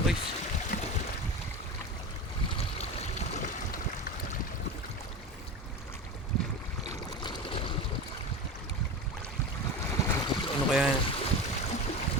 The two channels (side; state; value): both; normal; correlation 0.27